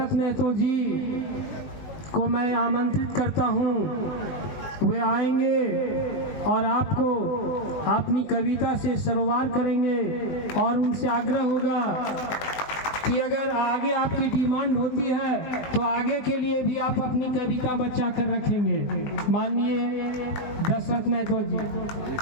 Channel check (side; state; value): right; late; 20 ms